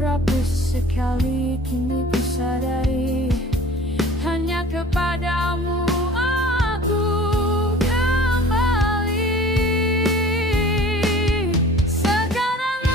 sekali. Kini ku sadari hanya kepadamu aku kembali. Sekarang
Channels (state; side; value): normal; both; correlation 0.46